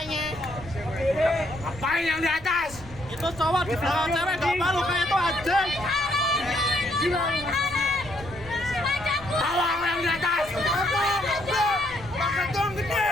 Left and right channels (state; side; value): noise; left; rumble, 18 dB below the sound